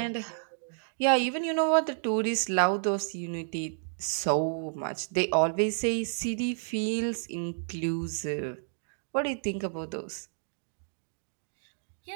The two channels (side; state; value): left; silent; digital silence